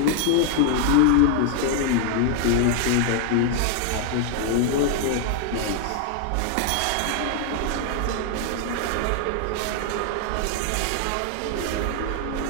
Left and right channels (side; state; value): both; different; correlation 0.00